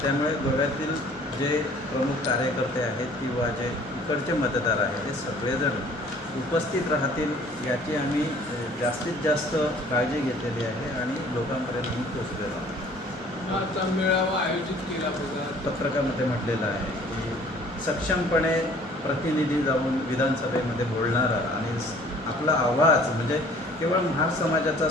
त्यामुळे गोव्यातील जे प्रमुख कार्यकर्ते आहेत किंवा जे इकडचे मतदार आहेत हे सगळेजण उपस्थित राहतील याची आम्ही जास्तीत जास्त काळजी घेतलेली आहे आणि लोकांपर्यंत पोचलेलो आहोत. आता मेळावा आयोजित केला बघा, पत्रकामध्ये म्हटलेलं आहे की सक्षमपणे प्रतिनिधी जाऊन विधानसभेमध्ये बोलणारा आणि आपला आवाज म्हणजे केवळ महार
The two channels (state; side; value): normal; both; correlation 0.53